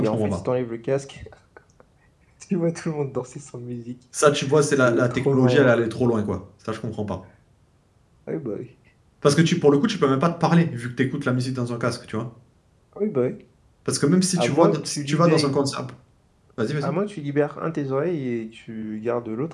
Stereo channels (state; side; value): identical; both; correlation 1.00